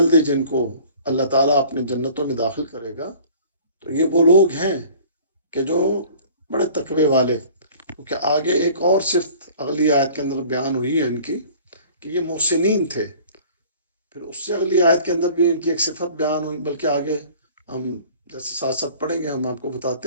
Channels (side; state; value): both; inverted; correlation -0.48